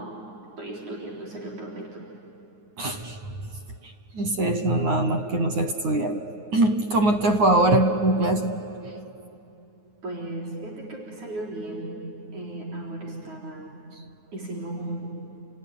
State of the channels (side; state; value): left; late; 9.5 ms